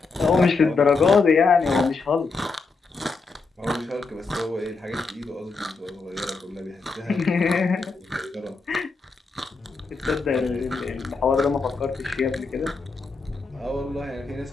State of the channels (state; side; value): quieter; right; 4.2 dB